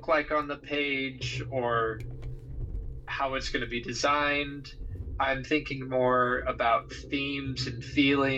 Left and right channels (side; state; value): both; identical; correlation 1.00